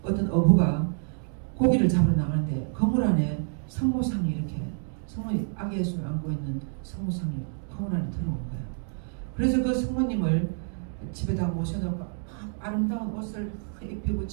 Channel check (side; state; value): left; silent; 59 dB below the other